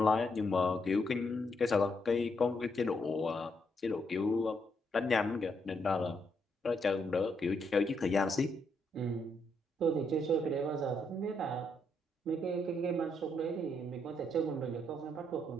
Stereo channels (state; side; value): normal; both; correlation 0.76